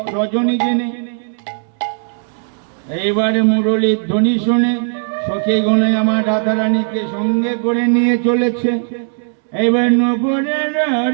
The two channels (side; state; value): left; silent; 67 dB below the other